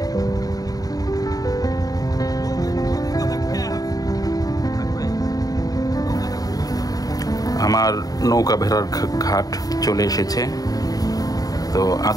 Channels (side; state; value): right; late; 0.18 ms